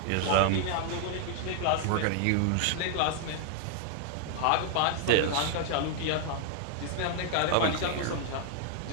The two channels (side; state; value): both; different; correlation 0.00